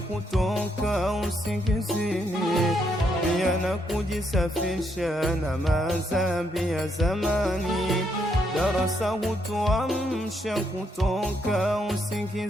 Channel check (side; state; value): both; normal; correlation 0.76